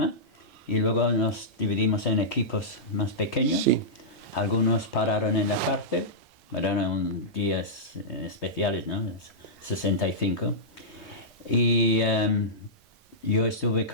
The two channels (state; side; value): normal; both; correlation -0.14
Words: y luego nos dividimos en equipos más pequeños. Sí. Algunos pararon en la cárcel, eran días especiales, ¿no? 65. Y yo estuve